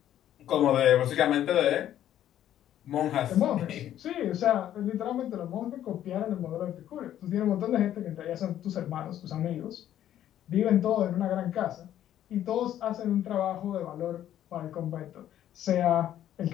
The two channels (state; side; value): quieter; right; 11.5 dB